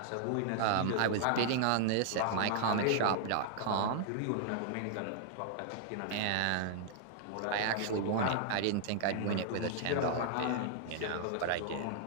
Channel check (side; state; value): both; different; correlation -0.01